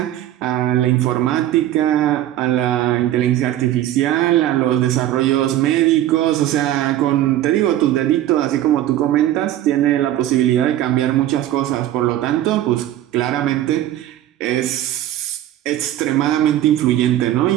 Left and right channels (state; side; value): quieter; left; 13.0 dB